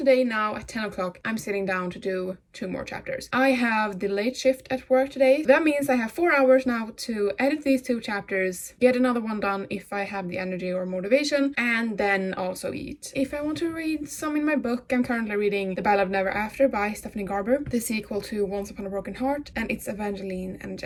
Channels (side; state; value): both; identical; correlation 1.00